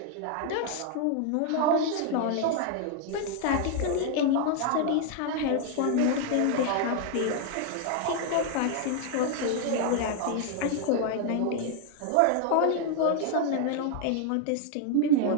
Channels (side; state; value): both; different; correlation 0.00